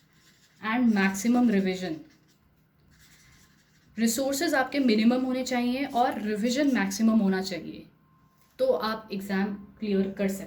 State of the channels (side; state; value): both; identical; correlation 1.00